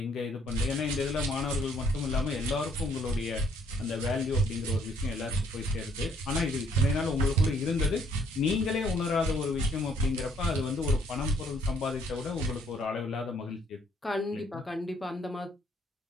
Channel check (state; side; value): normal; both; correlation 0.66